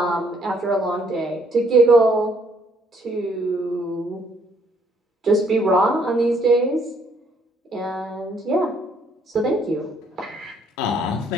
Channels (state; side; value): normal; both; correlation 0.66